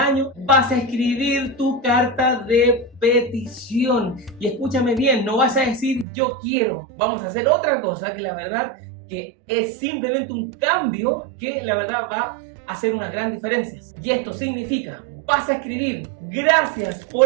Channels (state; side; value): drops out; left; at 6.1 s